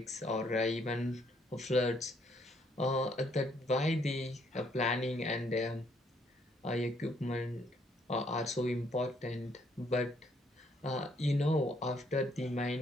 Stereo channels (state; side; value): normal; both; correlation 0.69